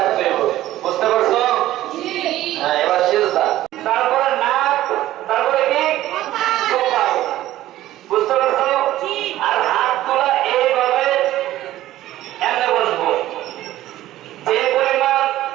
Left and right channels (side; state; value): left; quieter; 14.6 dB